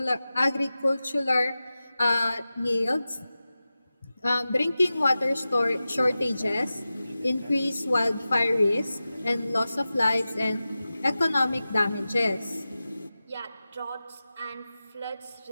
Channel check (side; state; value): both; inverted; correlation -0.95